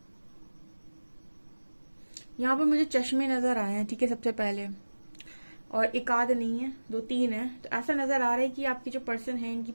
यहाँ पर मुझे चश्मे नजर आए हैं, ठीक है, सबसे पहले। और एक आध नहीं है, दो तीन है। तो ऐसा नजर आ रहा है कि आपके जो पर्सन है इनकी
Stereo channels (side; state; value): both; inverted; correlation -1.00